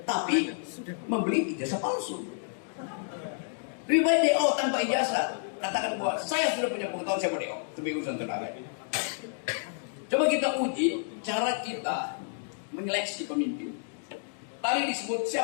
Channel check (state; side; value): silent; right; digital silence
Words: tapi membeli ijazah palsu. Lebih baik DO tanpa ijazah. Katakan bahwa saya sudah punya pengetahuan, saya mau DO. Itu urusan tenaga. Coba kita uji cara kita menyeleksi pemimpin. Tadi disebut